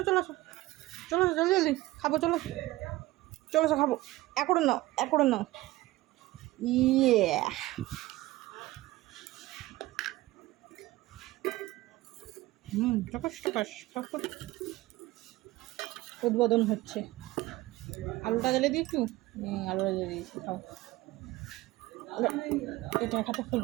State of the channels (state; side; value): quieter; left; 18.2 dB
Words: চলে আসো, চলে আসো, জলদি জলদি খাবো, চলো চলে আসো, খাবো। এক করে নাও, এক করে নাও। ইয়ে টকাস টকাস উদ্বোধন হচ্ছে। আলুটা জ্বালিয়ে দিই একটু, আলুটা জ্বালিয়ে দিয়েছি, খাও। এটা খাতে